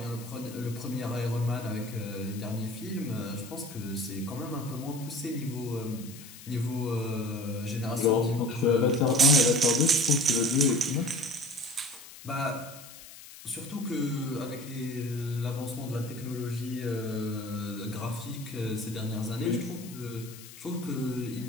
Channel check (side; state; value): left; noise; hiss, 17 dB below the sound